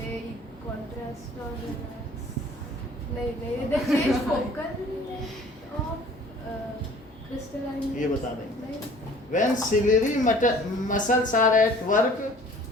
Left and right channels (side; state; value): both; normal; correlation 0.51